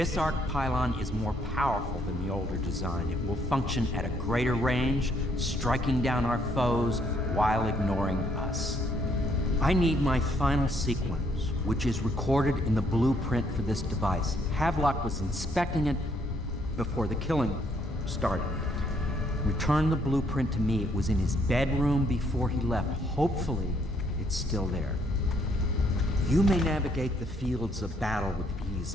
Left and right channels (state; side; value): normal; both; correlation 0.69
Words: arc pylon is more powerful than the older design. It will function at a greater range, striking down our foes while ignoring us. I need my final sequence, which is recorded in the blueprint for this device. Havelock was inspecting it before the killing started. Return the blueprint to me. It was in his bedroom before he left. Hopefully, it's still there. You may navigate the fields of battle with